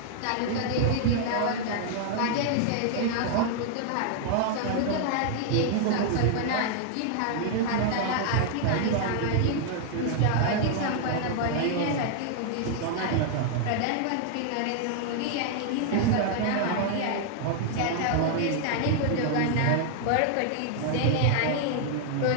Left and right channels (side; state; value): both; different; correlation 0.00